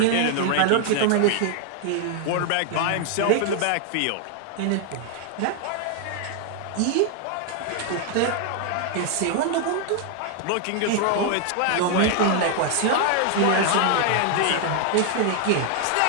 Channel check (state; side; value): different; both; correlation 0.00